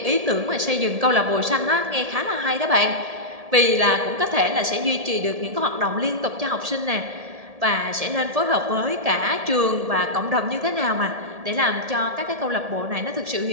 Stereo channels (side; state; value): left; late; 1.7 ms